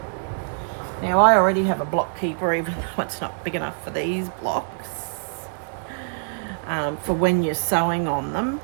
Now, I already have a block keeper, even though it's not big enough for these blocks, for when you're sewing on them.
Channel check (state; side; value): silent; left; digital silence